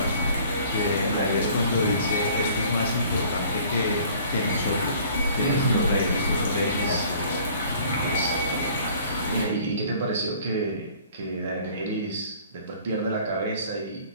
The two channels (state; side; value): inverted; both; correlation -0.52